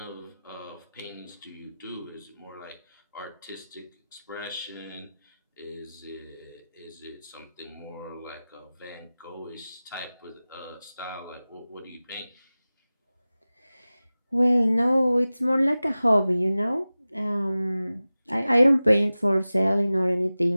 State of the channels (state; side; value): inverted; both; correlation -0.97